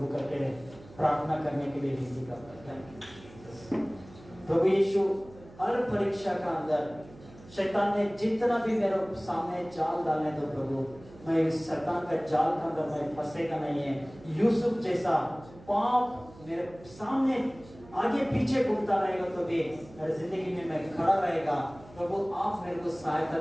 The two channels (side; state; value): right; noise; hum, 21 dB below the sound